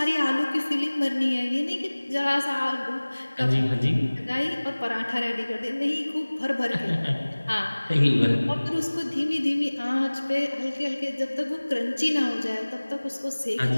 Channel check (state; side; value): inverted; both; correlation -1.00